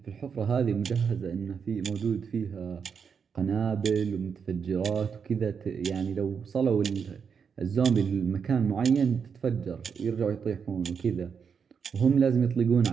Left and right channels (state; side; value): quieter; left; 6.4 dB